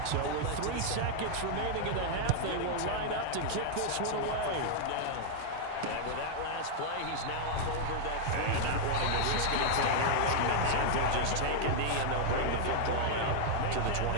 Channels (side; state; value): both; different; correlation -0.01